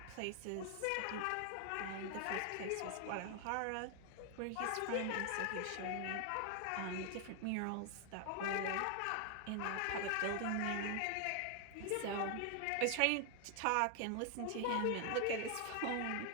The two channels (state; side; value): different; both; correlation 0.00